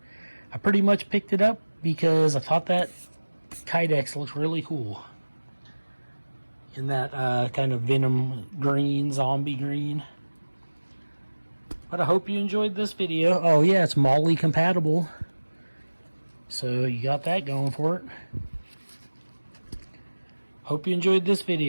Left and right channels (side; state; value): both; inverted; correlation -1.00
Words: I pretty much picked it up because I thought that Kydex looks really cool. In that kind of Venom Green, zombie green. But I hope you enjoyed this video. Oh yeah, it's molle compatible. So you got that going for it. Hope you enjoyed this